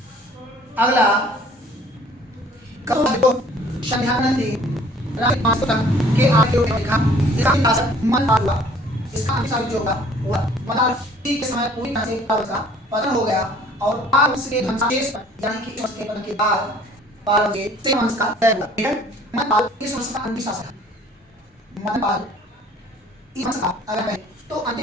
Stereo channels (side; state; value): both; normal; correlation 0.54